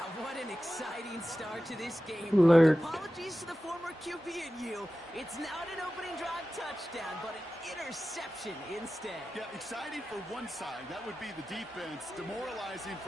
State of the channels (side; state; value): both; normal; correlation 0.94